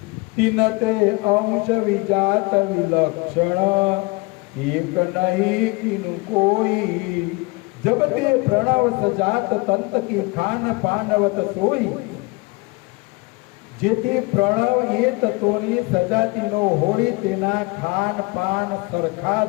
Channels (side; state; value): right; quieter; 25.9 dB